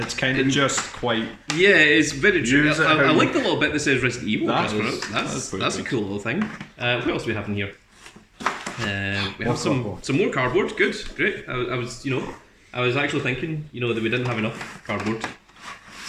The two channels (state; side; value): identical; both; correlation 1.00